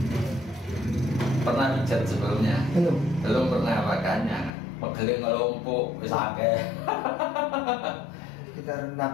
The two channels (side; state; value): right; drops out; at 4.5 s